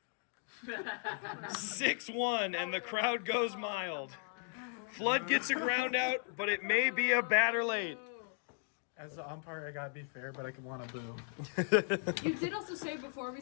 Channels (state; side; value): silent; right; 53 dB below the other